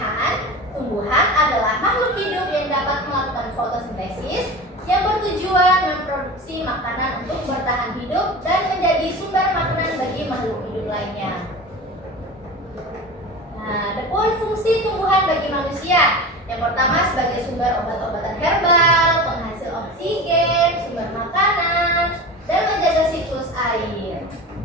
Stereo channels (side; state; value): both; normal; correlation 0.31